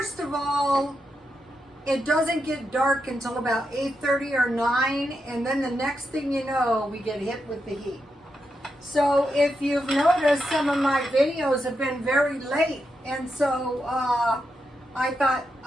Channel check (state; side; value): normal; both; correlation 0.85